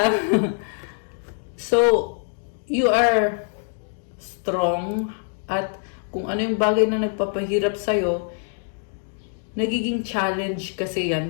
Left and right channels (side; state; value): right; silent; 58 dB below the other